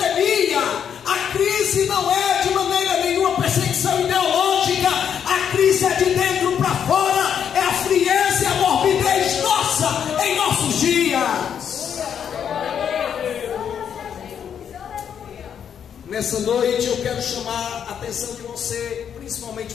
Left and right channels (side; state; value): right; quieter; 8.3 dB